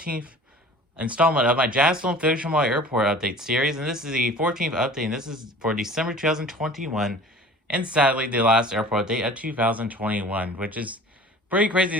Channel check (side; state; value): both; normal; correlation 0.43